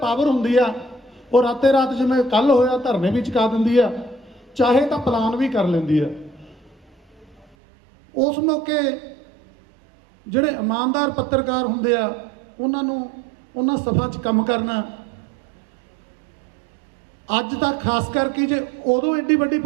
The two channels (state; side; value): drops out; left; at 7.6 s